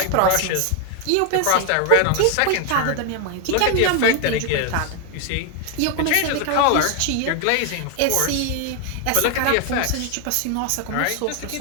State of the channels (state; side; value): different; both; correlation 0.01